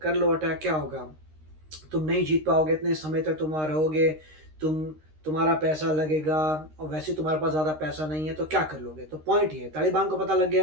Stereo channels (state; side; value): late; left; 13 ms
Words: कर लो अटैक, क्या होगा, तुम नहीं जीत पाओगे, इतने समय तक तुम रहोगे, तुम्हारा पैसा लगेगा और वैसे तुम्हारे पास ज़्यादा पैसा नहीं है, तो क्या कर लोगे। तो पॉइंट ये है, तालिबान को पता लग गया